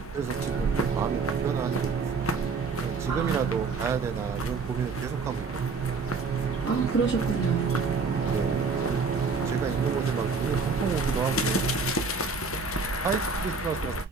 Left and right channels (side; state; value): left; quieter; 4.5 dB